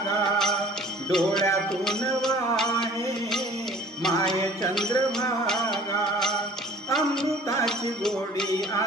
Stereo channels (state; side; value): normal; both; correlation 0.49